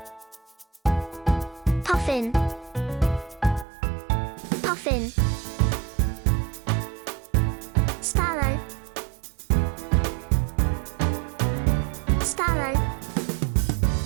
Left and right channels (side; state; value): left; drops out; at 3.7 s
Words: puffin, puffin. Sparrow, sparrow.